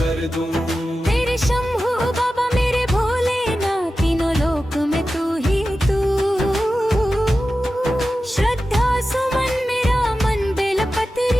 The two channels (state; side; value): normal; both; correlation 0.93